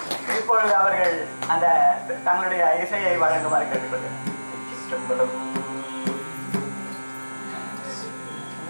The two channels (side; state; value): both; inverted; correlation -1.00